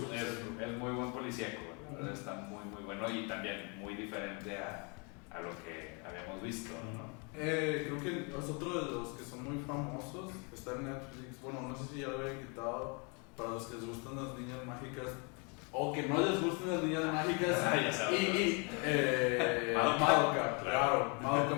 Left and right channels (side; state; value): right; quieter; 33.7 dB